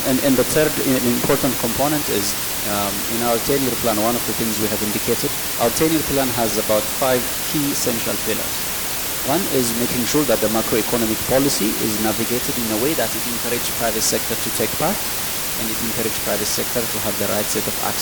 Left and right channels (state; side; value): identical; both; correlation 1.00